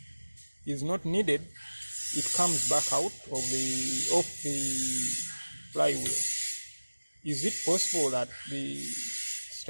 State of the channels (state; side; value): inverted; both; correlation -1.00